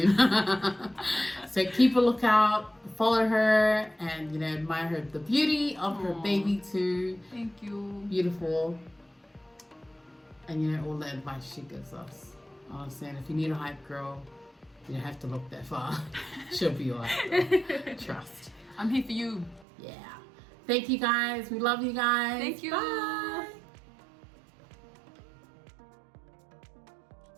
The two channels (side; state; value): left; drops out; at 19.7 s